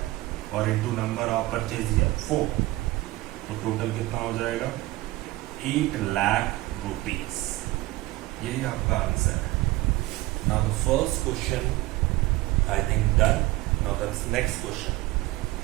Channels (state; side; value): quieter; left; 19.1 dB